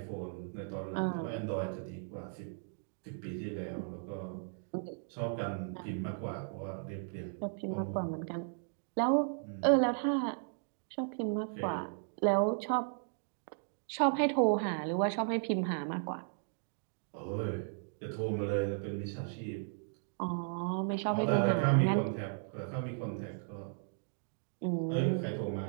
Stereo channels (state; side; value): silent; left; digital silence